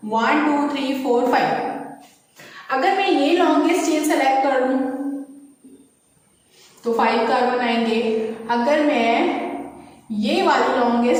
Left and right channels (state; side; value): identical; both; correlation 1.00